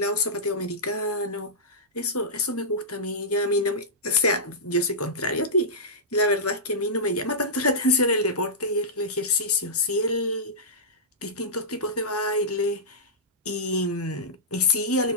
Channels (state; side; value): normal; both; correlation -0.14